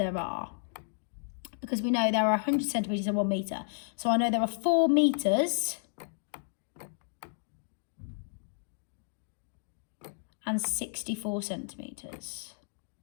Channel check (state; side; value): silent; right; digital silence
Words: are. Because we know there are 100 centimetres and 1 metre. So I know there are 4 metres and 64 centimetres.